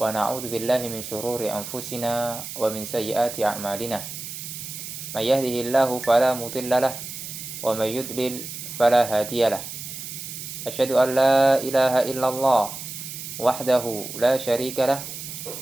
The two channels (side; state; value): right; noise; hiss, 9 dB below the sound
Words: na'udzu billahi min shururi anfusina wa min sayyiati a'malina. May yahdihillahu fala mudilla lahu wa may yudlil fala hadiyalah. Asyhadu an la ilaha illallah wahdahu la syarika lah